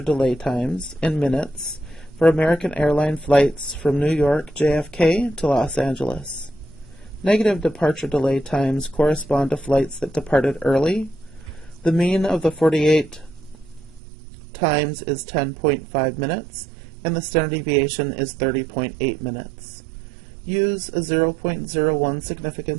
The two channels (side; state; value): left; drops out; at 14.0 s